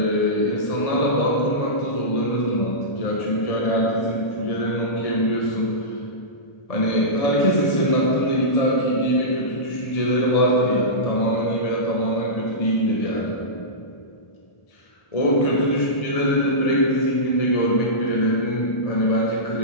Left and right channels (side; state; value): right; late; 1.7 ms